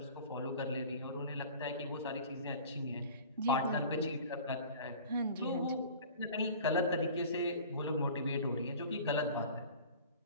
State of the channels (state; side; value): inverted; both; correlation -0.42